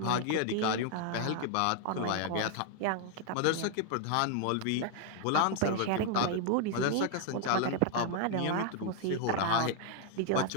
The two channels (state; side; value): different; both; correlation 0.00